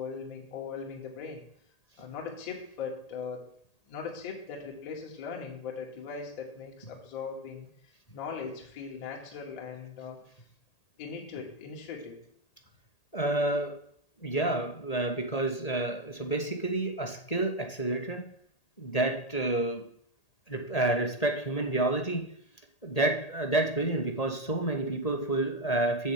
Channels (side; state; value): right; late; 1.8 ms